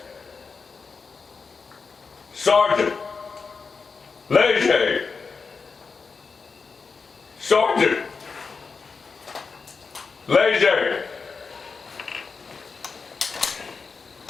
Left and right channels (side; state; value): right; quieter; 4.9 dB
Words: Sergeant Leger. Sergeant Leger.